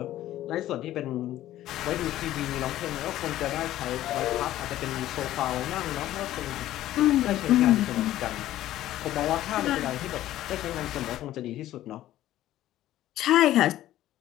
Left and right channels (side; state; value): right; quieter; 13.8 dB